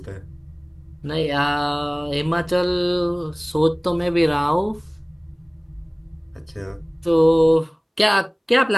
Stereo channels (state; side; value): identical; both; correlation 1.00